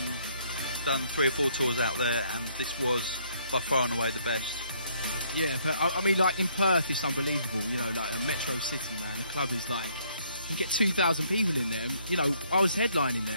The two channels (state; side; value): inverted; both; correlation -0.67